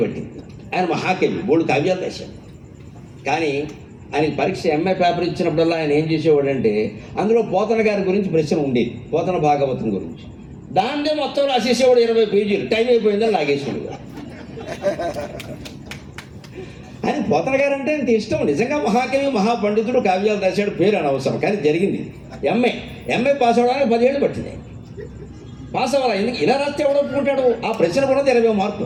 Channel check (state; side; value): identical; both; correlation 1.00